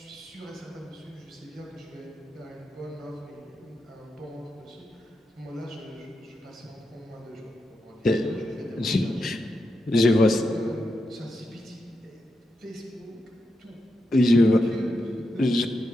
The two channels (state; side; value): normal; both; correlation 0.86